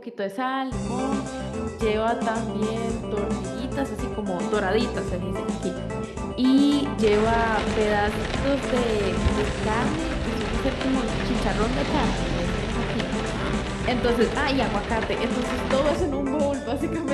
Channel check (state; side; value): identical; both; correlation 1.00